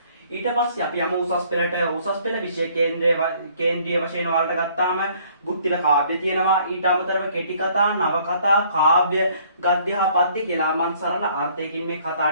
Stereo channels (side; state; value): both; inverted; correlation -0.60